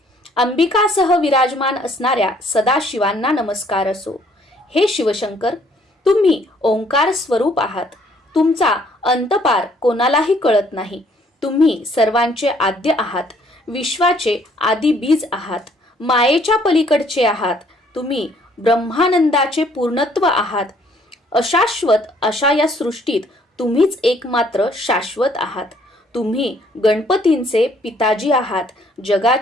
अंबिकासह विराजमान असणाऱ्या सदाशिवांना नमस्कार असो. हे शिवशंकर, तुम्ही ओंकार स्वरूप आहात. तुमचा अंतपार कोणालाही कळत नाही. तुम्ही सर्वांचे आद्य आहात. विश्वाचे आदी बीज आहात. मायेच्या पलीकडचे आहात. तुम्ही ब्रह्मानंदाचे पूर्णत्व आहात. अशाश्वत अशा या सृष्टीत तुम्हीच एकमात्र शाश्वत आहात. तुम्ही गणपतींचे पिताजी आहात.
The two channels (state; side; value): normal; both; correlation 0.63